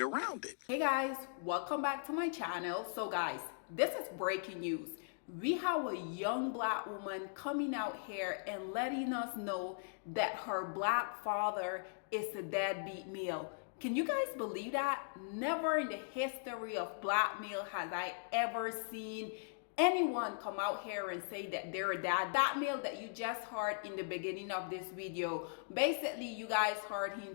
it. Hey guys, welcome back to my channel. So guys, this is breaking news. We have a young black woman coming out here and letting us know that her black father is a deadbeat male. Can you guys believe that? Never in the history of black male has I ever seen anyone come out here and say that they're a dad. That male that you just heard in the beginning of this video, basically you guys heard him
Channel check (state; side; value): silent; right; digital silence